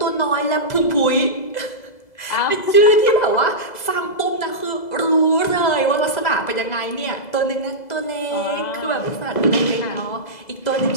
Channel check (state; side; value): late; right; 2.0 ms